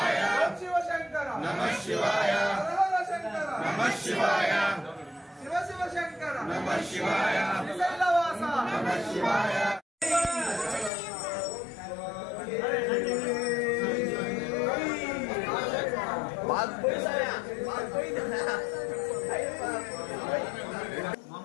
శివ శంకర హర శంకర శివ శివ శంకర శ్రీశైలవాస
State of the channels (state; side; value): drops out; right; at 10.9 s